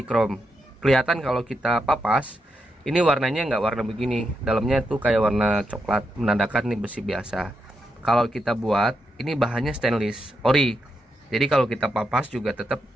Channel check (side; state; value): both; normal; correlation 0.84